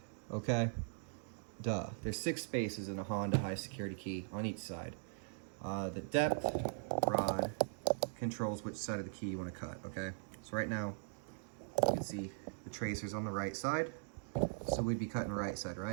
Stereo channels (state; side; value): silent; left; digital silence